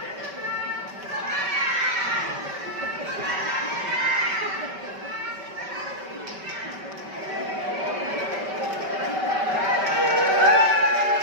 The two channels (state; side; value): late; left; 5.2 ms